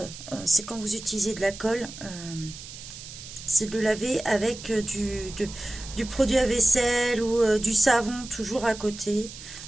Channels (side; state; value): right; noise; hiss, 13 dB below the sound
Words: c'est quand vous utilisez de la colle, c'est de laver avec du produit à vaisselle ou du savon toujours à côté.